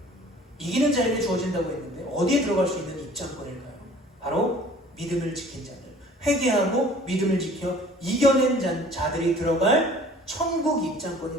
이기는 자에게 주어진다고 했는데 어디에 들어갈 수 있는 입장권일까요? 바로 믿음을 지킨 자들, 회개하고 믿음을 지켜 이겨낸 자들이 들어갈 천국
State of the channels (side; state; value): both; normal; correlation 0.50